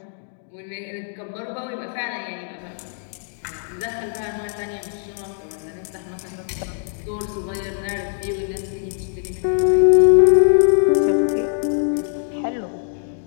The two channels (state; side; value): silent; right; digital silence